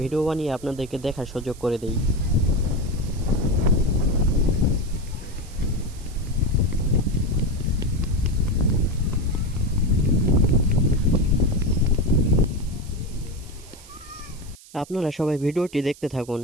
ভিডিও বানিয়ে আপনাদেরকে দেখার সুযোগ করে দেই। আপনারা সবাই ভিডিওটি দেখতে থাকুন।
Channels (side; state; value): right; noise; hiss, 21 dB below the sound